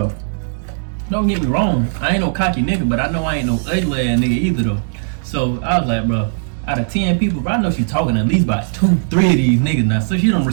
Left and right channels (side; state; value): left; silent; digital silence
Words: don't get me wrong, I ain't no cocky nigga, but I know I ain't no ugly ass nigga either though. So I was like, bro, out of 10 people, bro, I know she talking at least about 2, 3 of these niggas now. So she don't